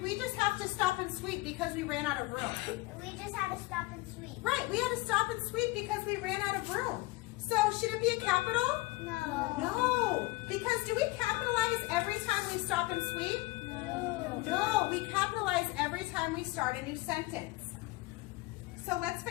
we just have to stop and sweep because we ran out of room? We just had to stop and sweep. Right, we had to stop and sweep because we ran out of room. So should it be a capital? No. No, because do we capitalize every time we stop and sweep? No, we capitalize every time we start a new sentence. So let's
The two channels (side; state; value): right; quieter; 21.3 dB